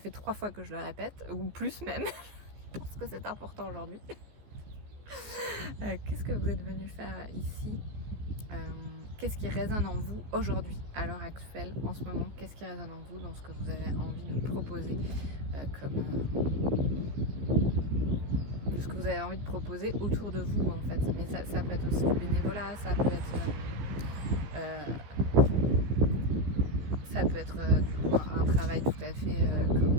3 fois que je le répète, ou plus même, parce que c'est important aujourd'hui. Qu'est-ce que vous êtes venu faire ici? Qu'est-ce qui résonne en vous aujourd'hui, à l'heure actuelle, en ce moment? Qu'est-ce qui résonne en vous dans ce que vous avez envie de proposer de ce que vous avez envie de proposer autour de vous en fait. Mais ça peut être aussi du bénévolat, ça peut être du coup un travail tout à fait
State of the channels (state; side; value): late; left; 14 ms